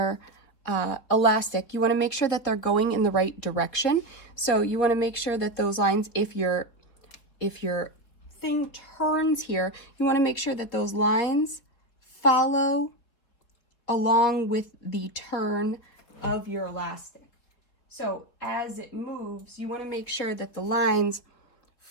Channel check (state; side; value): late; right; 4.1 ms